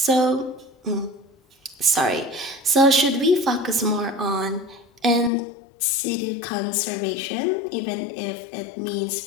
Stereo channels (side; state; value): right; drops out; at 5.3 s